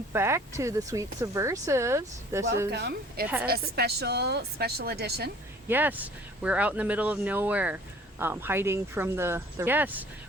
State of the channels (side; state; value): both; normal; correlation 0.51